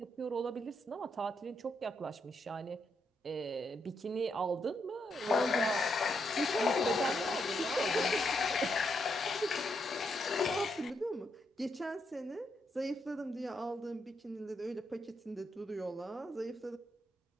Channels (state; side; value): normal; both; correlation 0.79